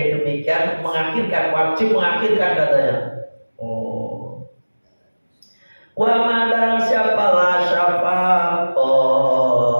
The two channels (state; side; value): inverted; both; correlation -1.00